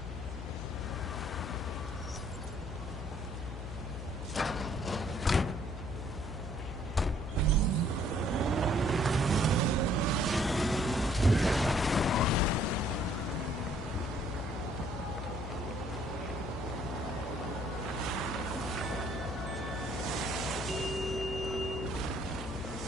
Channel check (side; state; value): left; noise; hum, 7 dB below the sound